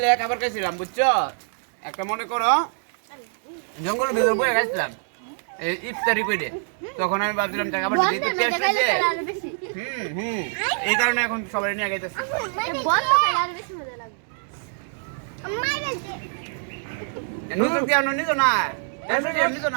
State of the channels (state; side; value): silent; left; digital silence